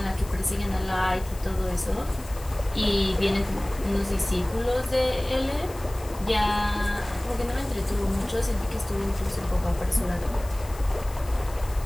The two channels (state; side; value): noise; left; hiss, 19 dB below the sound